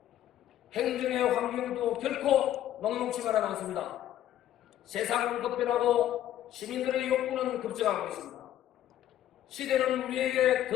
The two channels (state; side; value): quieter; right; 12.1 dB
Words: 행정의 환경도 결코 녹록지만은 않습니다. 세상은 급변하고 시민들의 욕구는 급증하고 있습니다. 시대는 우리에게